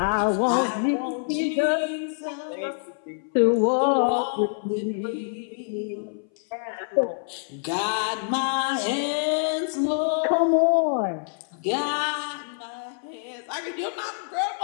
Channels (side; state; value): right; silent; 59 dB below the other